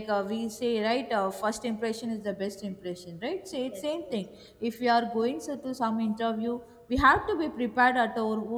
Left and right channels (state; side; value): identical; both; correlation 1.00